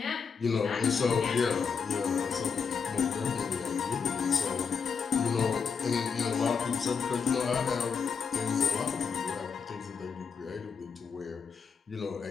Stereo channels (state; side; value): quieter; right; 6.0 dB